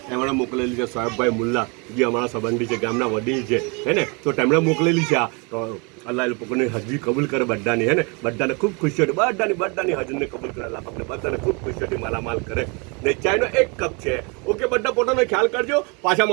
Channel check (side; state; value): left; quieter; 31.5 dB